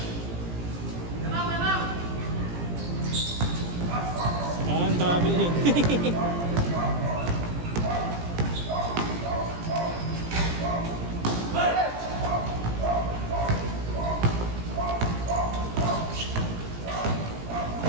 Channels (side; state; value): left; late; 17 ms